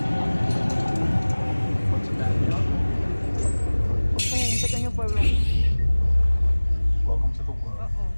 Es como un pequeño pueblo. Welcome to the world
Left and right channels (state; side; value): inverted; both; correlation -1.00